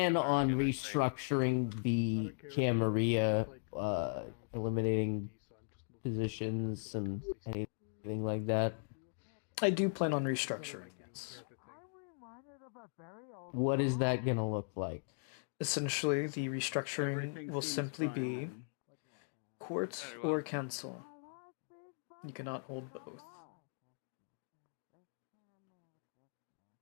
on restructuring the Camarilla, eliminating positions and anything like that? I do plan on restructuring, yes. What is that gonna look like? Essentially, the restructuring will simply be court or council. You cannot hold both.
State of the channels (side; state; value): right; silent; digital silence